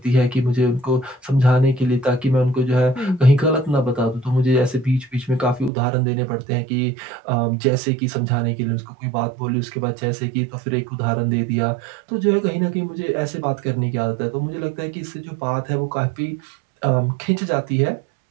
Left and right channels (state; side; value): drops out; left; at 5.7 s